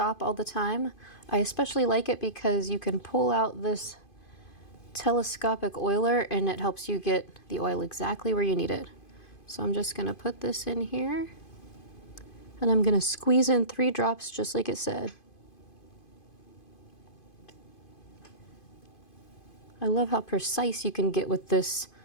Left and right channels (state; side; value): late; right; 2.5 ms